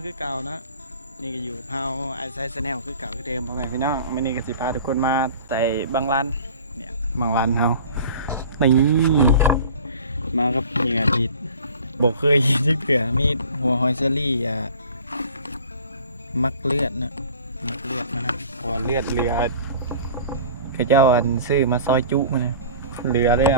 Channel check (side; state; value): both; inverted; correlation -0.44